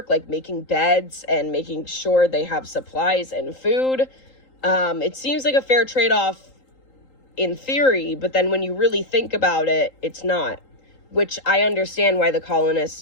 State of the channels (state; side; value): late; right; 3.8 ms